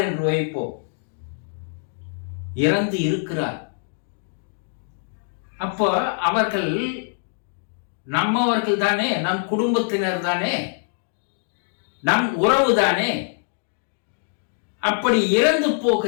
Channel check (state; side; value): silent; right; digital silence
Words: என்று வைப்போம். இறந்து இருக்கிறார். அப்போ அவர்கள் நம்மவர்கள் தானே, நம் குடும்பத்தினர் தானே, நம் உறவு தானே. அப்படி இறந்து